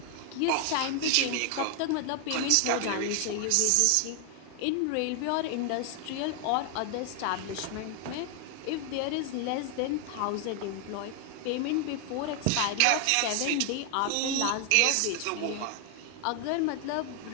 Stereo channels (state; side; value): different; both; correlation 0.00